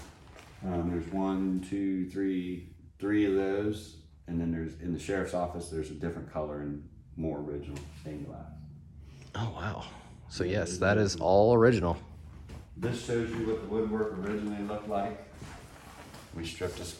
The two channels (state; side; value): identical; both; correlation 1.00